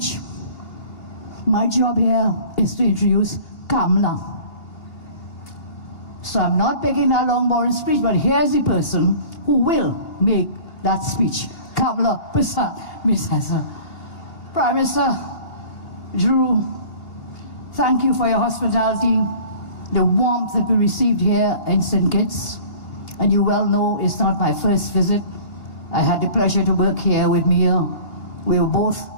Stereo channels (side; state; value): right; late; 2.9 ms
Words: My job here is to introduce Kamala. So I'm not making that long, boring speech, but here's the person who will make that speech. Kamala Persad Bisesa. Prime Minister, Drew, thank you for your hospitality, the warmth that we received here in St. Kitts. And you well know it's not my first visit. I had the pleasure to work here with Mia. We were both